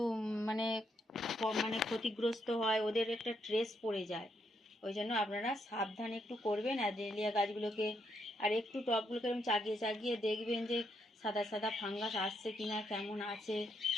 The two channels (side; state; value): both; normal; correlation 0.77